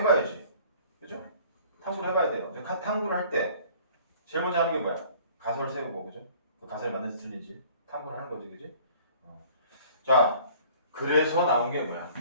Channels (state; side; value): inverted; both; correlation -0.52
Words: 그죠? 탐구를 해봐야 돼요. 탐구를 할 때 제일 먼저 하는 게 뭐야? 가설을 세우고, 그죠? 그 가설이 맞는지 틀린지 탐구를 하는 거지, 그지? 자, 그래서 나온 게 뭐야?